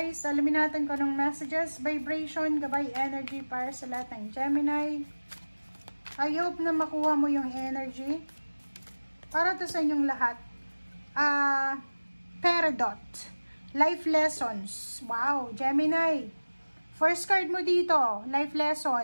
Alamin natin kung anong messages, vibration, gabay, energy para sa lahat ng Gemini. I hope na makuha mo yung energy para to sa inyong lahat. Peridot, life lessons. Wow, Gemini. First card mo dito, life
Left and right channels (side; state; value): both; inverted; correlation -1.00